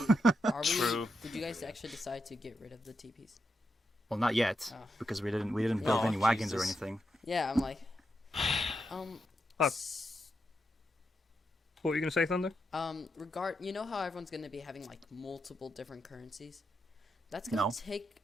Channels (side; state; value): both; normal; correlation 0.84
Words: True. Did you guys actually decide to get rid of the TPs? Well, not yet, because we didn't build any wagons or anything. Yeah, I'm like, What were you gonna say, Thunder? you know how everyone's gonna be having like multiple different currencies? That's gonna take.